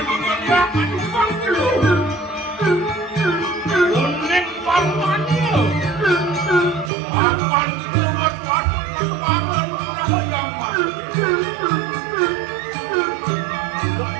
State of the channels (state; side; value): drops out; left; at 6.9 s